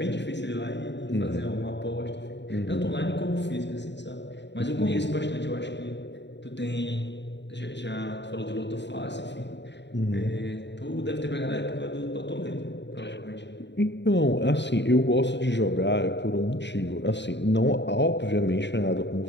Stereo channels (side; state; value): right; late; 0.52 ms